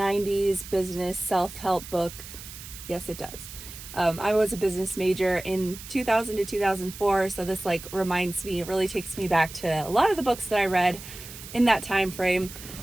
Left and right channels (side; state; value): right; noise; hiss, 14 dB below the sound